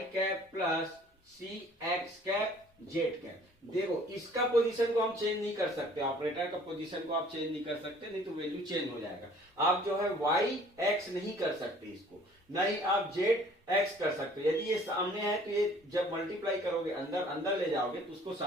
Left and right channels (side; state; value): both; normal; correlation 0.54